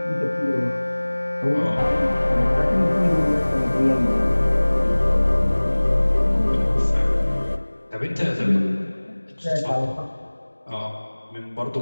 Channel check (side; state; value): both; inverted; correlation -1.00